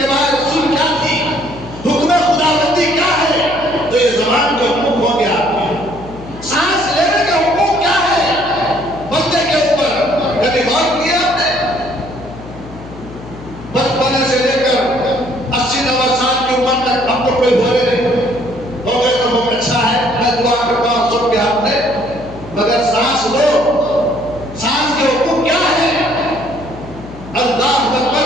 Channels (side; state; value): left; noise; hum, 15 dB below the sound